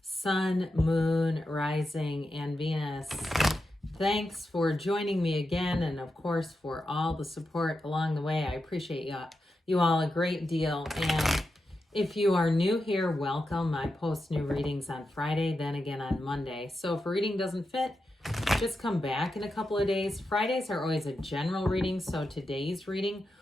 Sun, Moon, Rising, and Venus. Thanks for joining me again, and of course for all the support along the way. I appreciate you all a great deal. And if you are new here, welcome. I post new readings on Friday, then again on Monday. So if a reading doesn't fit, just come back in a couple of days. Fridays are always a general reading, so today's reading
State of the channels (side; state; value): both; normal; correlation 0.88